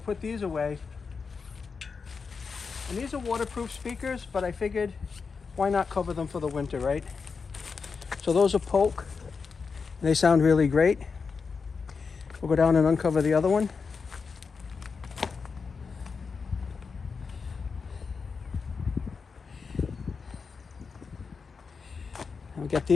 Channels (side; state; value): right; quieter; 5.2 dB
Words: put these away, and these are waterproof speakers, but I figured why not cover them for the winter, right? So those are Polk. They sound really great. We'll go down and uncover the other one. And we get